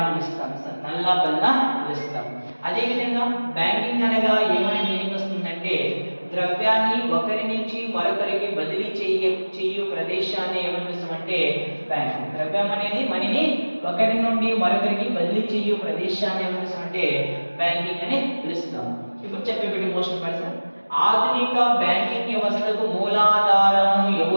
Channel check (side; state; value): both; inverted; correlation -1.00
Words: పిలుస్తాం సార్. నల్ల బల్ల పిలుస్తాం. అదే విధంగా బ్యాంకింగ్ అనగా ఏమని మీనింగ్ వస్తుందంటే ద్రవ్యాన్ని ఒకరి నుంచి మరొకరికి బదిలీ చేయు ప్రదేశాన్ని ఏమని పిలుస్తామంటే బ్యాంక్. ద్రవ్యం అనేది మనీని ఒకరి నుండి మరొకరికి బదిలీ చేయు ప్రదేశాన్ని ఏమని పిలుస్తామంటే బ్యాంకింగ్ అని పిలుస్తాం. ఇప్పుడు చెప్పేటి మోస్ట్ పర్సన్ ఆధునిక బ్యాంకింగ్ వ్యవస్థకు మూలాధారము